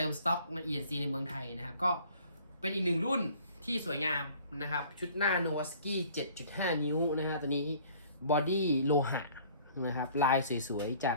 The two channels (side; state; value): both; inverted; correlation -0.53